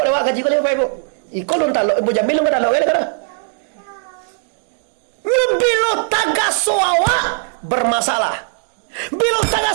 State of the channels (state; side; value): silent; left; 63 dB below the other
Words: awak gaji kau lepas ibu. Iko nun talok, ibu Jamil nun talok kan? Bila tagaso awak bermasalah, bila